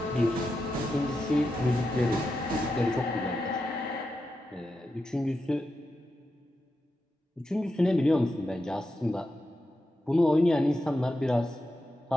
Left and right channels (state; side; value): normal; both; correlation 0.88